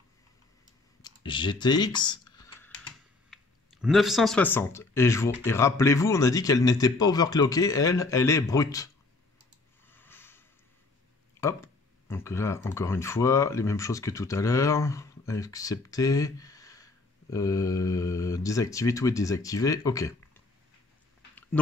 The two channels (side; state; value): right; quieter; 3.4 dB